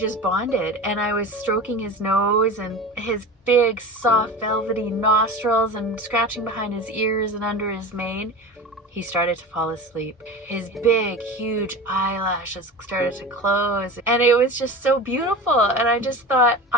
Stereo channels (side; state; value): both; normal; correlation 0.31